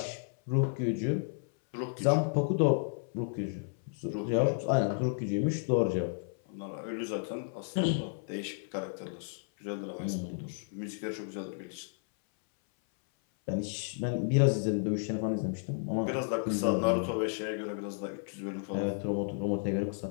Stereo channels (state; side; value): silent; right; 56 dB below the other